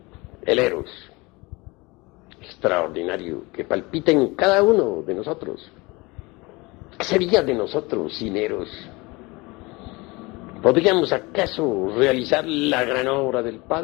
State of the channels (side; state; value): right; quieter; 24.2 dB